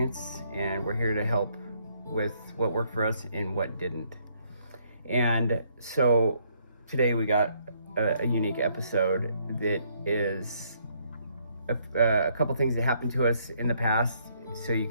and we're here to help with what worked for us and what didn't. And so today we got a unique episode that is a couple things that happened to us in the past, so you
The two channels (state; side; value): inverted; both; correlation -0.69